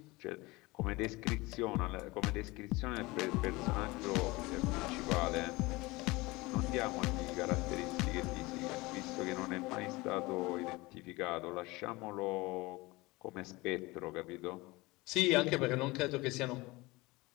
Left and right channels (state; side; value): quieter; right; 22.3 dB